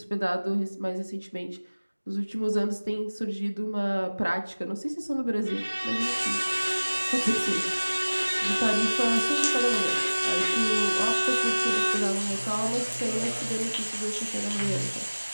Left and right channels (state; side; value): inverted; both; correlation -1.00